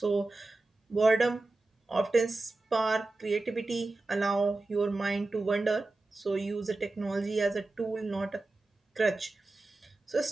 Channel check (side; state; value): left; quieter; 3.1 dB